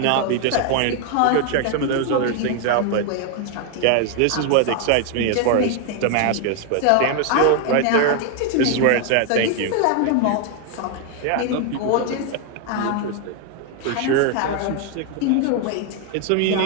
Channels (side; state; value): both; different; correlation 0.00